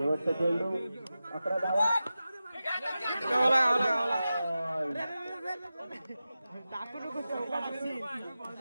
चेंडू 11 धावा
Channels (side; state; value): both; inverted; correlation -0.93